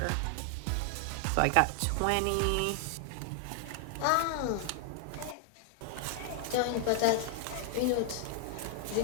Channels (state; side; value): different; both; correlation 0.00